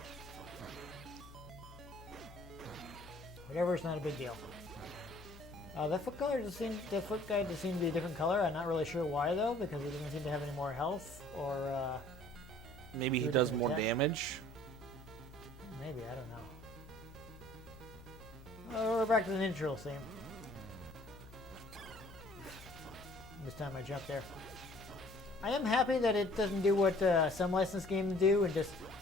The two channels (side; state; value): left; noise; hum, 17 dB below the sound